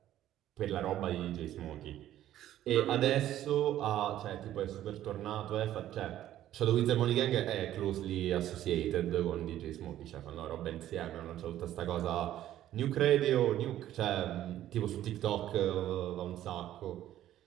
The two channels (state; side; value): quieter; left; 12.6 dB